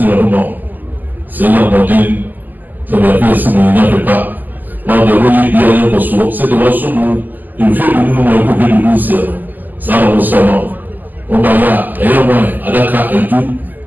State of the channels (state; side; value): late; left; 0.085 ms